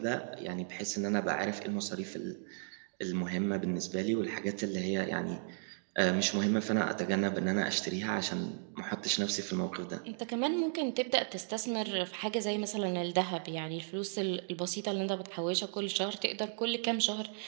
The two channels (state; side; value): silent; left; digital silence